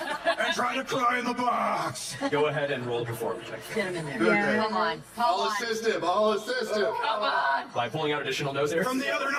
try to cry in the box. Go ahead and roll performance check. Get him in there. Yeah. Come on. I'll assist him. I'll assist him. Come on. By pulling out additional nose hairs. From the other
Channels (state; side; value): identical; both; correlation 1.00